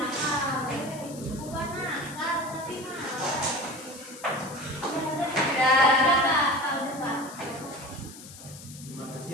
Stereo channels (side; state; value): left; noise; hiss, 16 dB below the sound